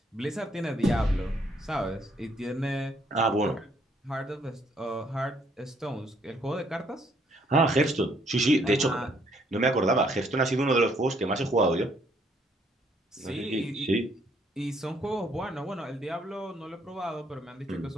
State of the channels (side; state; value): both; normal; correlation 0.67